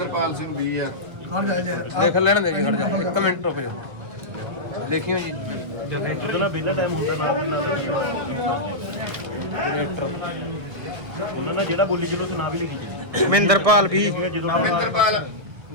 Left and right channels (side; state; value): left; late; 1.7 ms